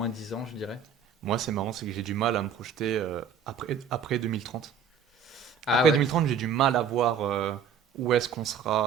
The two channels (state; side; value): quieter; left; 6.5 dB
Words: 10 ans, je dirais. Moi, c'est marrant, c'est que j'ai du mal à me projeter après 2030. Ah Après ouais. 2030, j'ai du mal à voir où est-ce qu'on